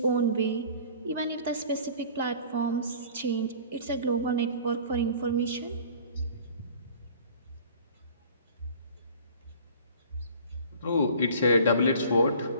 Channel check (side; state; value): both; inverted; correlation -0.46